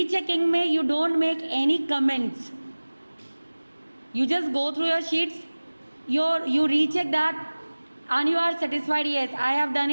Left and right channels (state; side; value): inverted; both; correlation -1.00